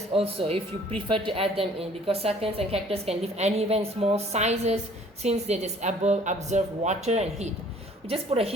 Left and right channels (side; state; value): both; normal; correlation 0.55